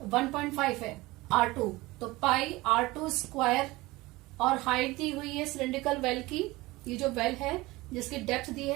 1.5 है, R2। तो पाई R2 स्क्वायर, और हाइट दी हुई है सिलिंड्रिकल वेल की, ये जो वेल है जिसकी डेप्थ दी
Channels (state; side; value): quieter; left; 20.5 dB